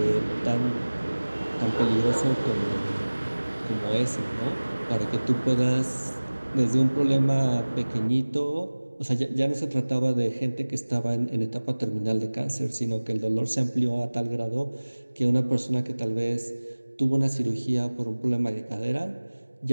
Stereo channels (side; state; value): both; inverted; correlation -1.00